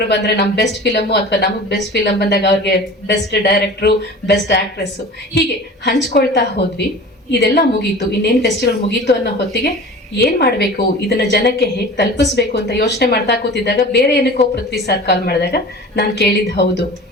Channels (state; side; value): normal; both; correlation 0.38